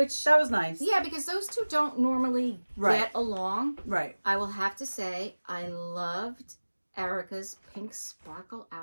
that was nice. Yeah, because those two don't normally get along. Right. I will have to say, I loved Erika's pink sparkle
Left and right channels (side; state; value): both; inverted; correlation -1.00